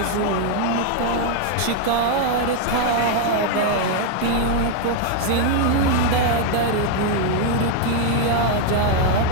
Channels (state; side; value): different; both; correlation 0.00